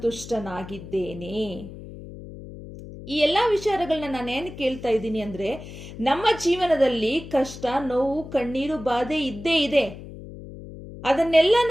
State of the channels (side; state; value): left; noise; hum, 14 dB below the sound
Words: ಈ ಎಲ್ಲಾ ವಿಚಾರಗಳನ್ನ ನಾನೇನು ಕೇಳ್ತಾ ಇದ್ದೀನಿ ಅಂದ್ರೆ, ನಮ್ಮ ಜೀವನದಲ್ಲಿ ಕಷ್ಟ, ನೋವು, ಕಣ್ಣೀರು, ಬಾಧೆ ಇದ್ದೇ ಇದೆ. ಅದನ್ನೆಲ್ಲ